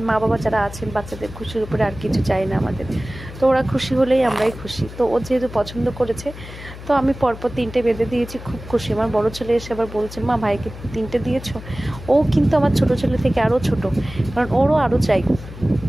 মা বাবা যারা আছেন, বাচ্চাদের খুশির উপরে আর কিছু চাই না আমাদের। তো ওরা খুশি হলেই আমরাই খুশি। তো ও যেহেতু পছন্দ করেছে, তো আমি পরপর 3টে বেঁধে দিয়েছি, খুব খুশি। আমার বড় ছেলে এসে আবার বলছে, মা ভাইকে 3টে দিয়েছো। ও কিন্তু আমার ছোট ছেলে থেকে আরও ছোট, কারণ ওরও আরও চাই।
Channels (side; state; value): left; noise; hum, 14 dB below the sound